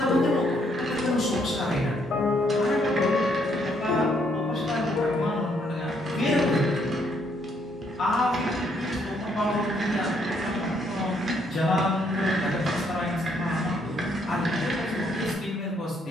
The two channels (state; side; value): normal; both; correlation 0.71